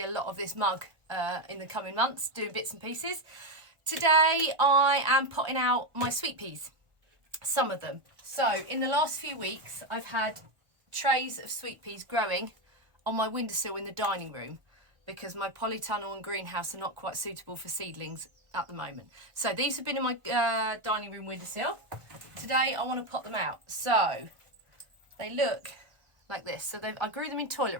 a lot of this mug in the coming months, doing bits and pieces. Today I am potting out my sweet peas, some of them. So in the last few weeks, I've had trays of sweet peas growing on my windowsill in the dining room because my polytunnel and greenhouse are not quite suitable for seedlings at the moment. So these have been in my dining room windowsill. Today I want to pot them out. So they look like this. So I grew them in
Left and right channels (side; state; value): left; late; 1.4 ms